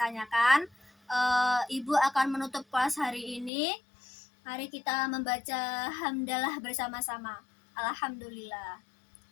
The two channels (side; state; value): right; drops out; at 3.5 s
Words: Ibu akan menutup kelas hari ini. Mari kita membaca hamdalah bersama-sama. Alhamdulillah.